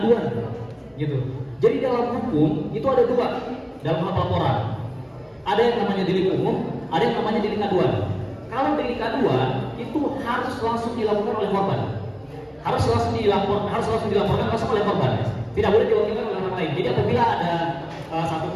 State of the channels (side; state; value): both; identical; correlation 1.00